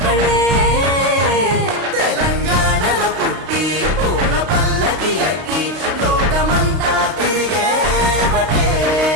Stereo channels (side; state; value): left; late; 32 ms